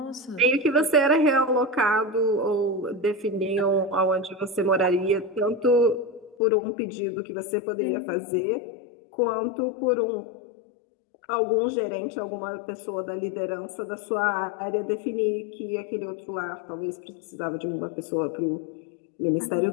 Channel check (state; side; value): drops out; right; at 6.4 s